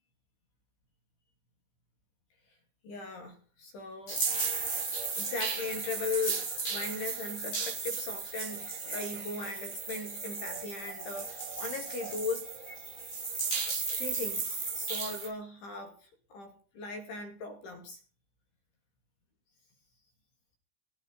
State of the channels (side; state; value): right; late; 15 ms